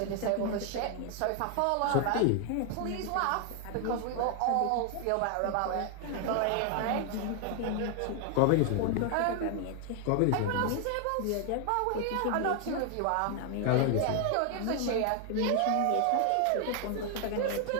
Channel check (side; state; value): both; different; correlation 0.00